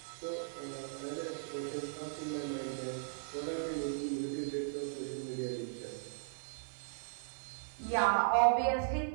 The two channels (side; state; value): left; silent; 53 dB below the other